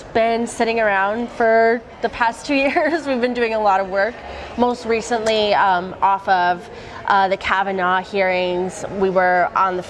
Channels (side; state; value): both; identical; correlation 1.00